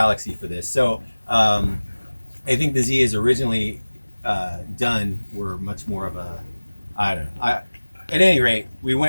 for this. So I think the Z is originally done were much more of a, I don't know. At any rate, we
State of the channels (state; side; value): inverted; both; correlation -1.00